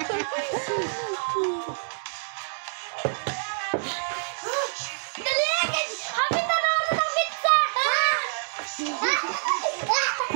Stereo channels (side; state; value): left; silent; digital silence